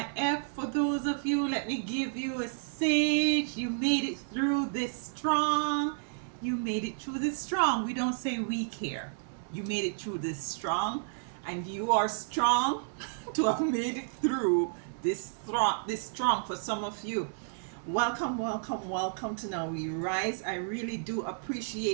for those of you, let me give you a sage. You made it through this strong. You made it through this strong. We don't say weak here. You made it through this strong, and you are strong to have made it through this strong for some of you. Welcome, welcome, welcome to Now We Rise. I really do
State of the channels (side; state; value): left; silent; digital silence